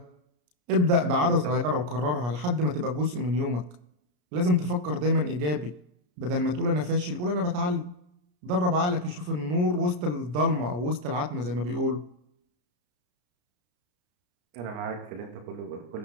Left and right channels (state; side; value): late; left; 33 ms